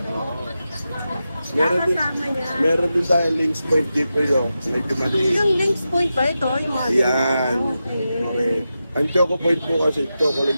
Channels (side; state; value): both; inverted; correlation -0.90